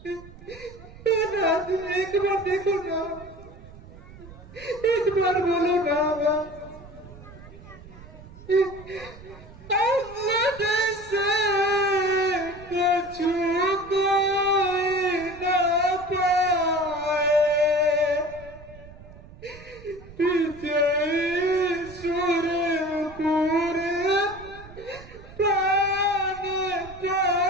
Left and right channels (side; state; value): right; noise; rumble, 19 dB below the sound